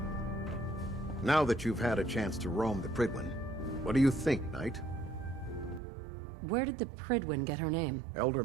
Now that you've had a chance to roam the Prydwen, what do you think, Knight? Where did the Prydwen get her name? Elder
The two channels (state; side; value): drops out; left; at 5.8 s